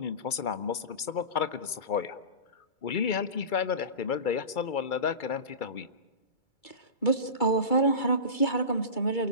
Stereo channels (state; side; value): late; right; 2.3 ms